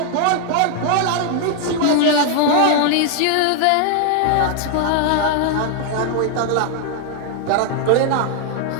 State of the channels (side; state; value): both; different; correlation 0.00